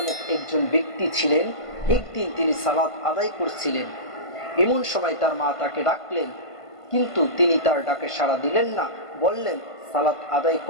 একজন ব্যক্তি ছিলেন। একদিন তিনি সালাত আদায় করছিলেন। এমন সময় তার মা তাকে ডাকলেন, কিন্তু তিনি তার ডাকে সাড়া দিলেন না। বললেন, সালাত আদায়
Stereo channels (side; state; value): right; late; 1.5 ms